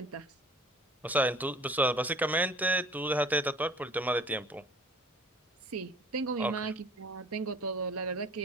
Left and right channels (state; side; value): normal; both; correlation 0.49